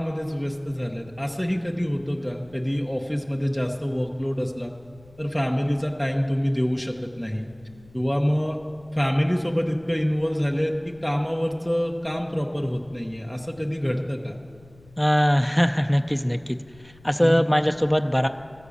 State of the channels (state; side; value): noise; left; rumble, 26 dB below the sound